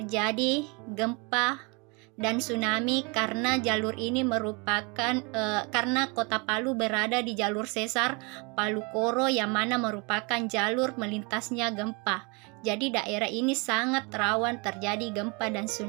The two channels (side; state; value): left; quieter; 30.2 dB